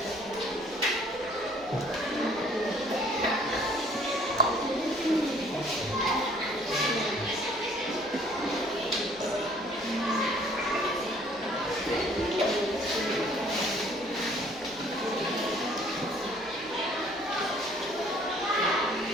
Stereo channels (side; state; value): right; noise; hum, 24 dB below the sound